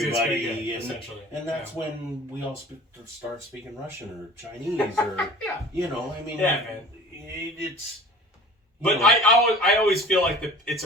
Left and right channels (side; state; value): both; normal; correlation 0.43